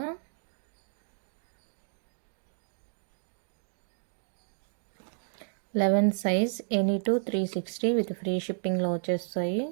Eleven size any two 360 with free షిప్పింగ్లో వచ్చేస్తాయి.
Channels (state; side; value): silent; left; digital silence